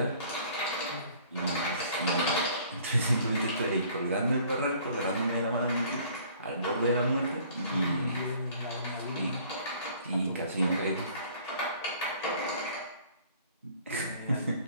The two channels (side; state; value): both; inverted; correlation -0.54